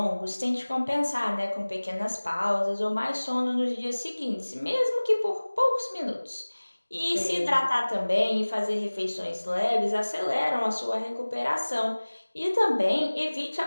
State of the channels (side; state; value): both; inverted; correlation -1.00